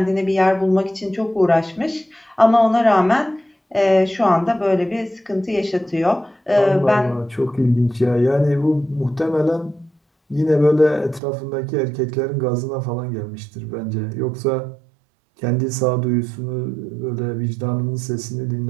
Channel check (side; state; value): left; drops out; at 11.2 s